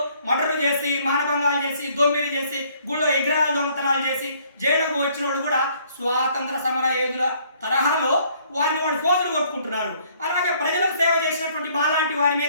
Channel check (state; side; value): inverted; both; correlation -0.62